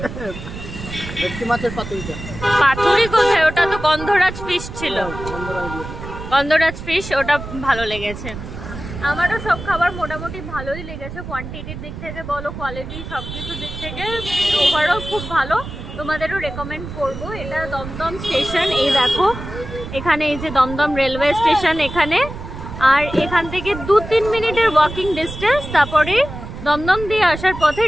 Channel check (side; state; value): right; noise; rumble, 10 dB below the sound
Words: ভেটকি মাছের পাতুরিটা। পাতুরি কোথায়? ওটা তো গন্ধরাজ ফিশ ছিল, গন্ধরাজ ফিশ, ওটা ভালো লেগেছে। আমারও সব খাবার মোটামুটি ভালোই লেগেছে, কোয়ান্টিটির দিক থেকে বলো, কোয়ালিটি, সব কিছুর দিক থেকে ওভারঅল খুব ভালো। তোমাদেরও রেকমেন্ড করবো। এটা দমদম স্টেশন, এই দেখো এখানে, এই যে দমদম রেলওয়ে স্টেশন এখানে, আর এখান থেকে 2-3 মিনিটের ওয়াকিং ডিস্টেন্স। তারপরে দমদম দিয়ে আসার পথে